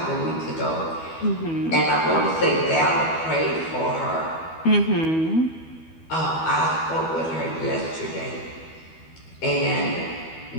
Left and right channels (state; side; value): late; right; 12 ms